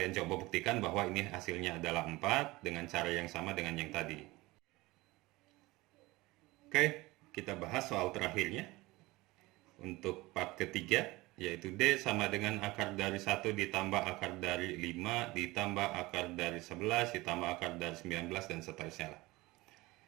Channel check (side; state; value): left; quieter; 20.7 dB